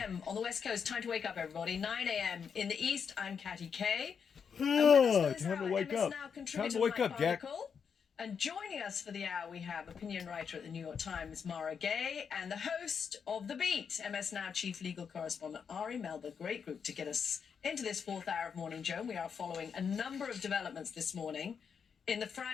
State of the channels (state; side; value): quieter; right; 6.6 dB